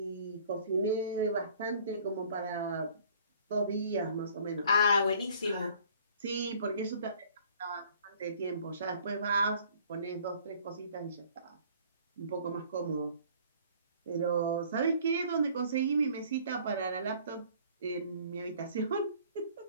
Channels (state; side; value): inverted; both; correlation -0.54